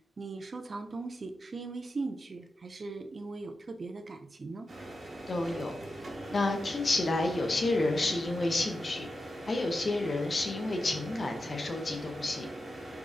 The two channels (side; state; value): both; normal; correlation 0.90